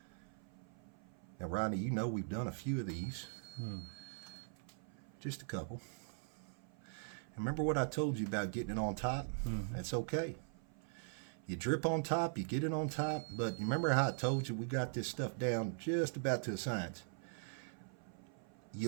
Now, Rodney, you know we've done a few of these. Just a couple. Remember what I told you about getting it on top? That's okay. You drip on top, you get it on top, but remember how I told you we got this stuff down just about to a science.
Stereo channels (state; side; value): silent; left; 50 dB below the other